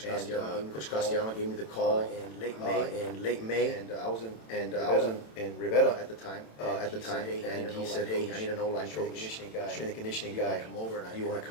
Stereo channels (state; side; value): late; right; 27 ms